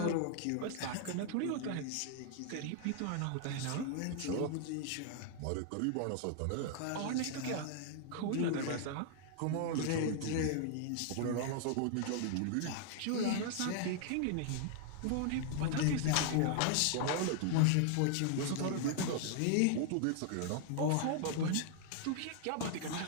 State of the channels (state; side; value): different; both; correlation 0.00